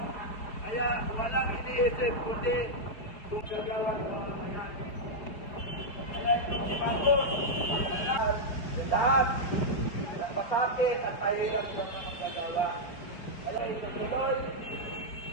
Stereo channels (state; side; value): late; right; 4.7 ms